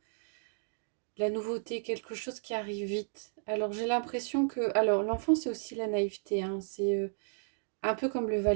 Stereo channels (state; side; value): silent; left; digital silence